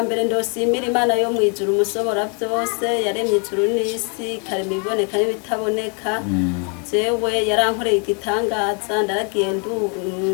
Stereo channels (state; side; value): quieter; right; 36.4 dB